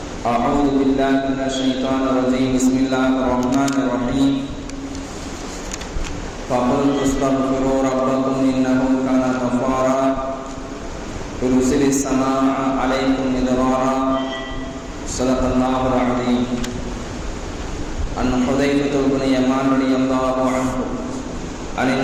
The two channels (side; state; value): both; identical; correlation 1.00